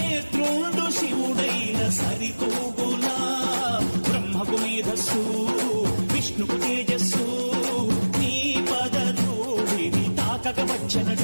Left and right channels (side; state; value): both; inverted; correlation -1.00